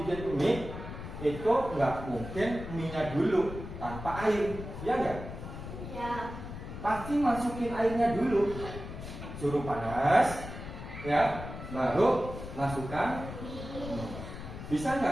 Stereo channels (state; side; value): noise; left; rumble, 10 dB below the sound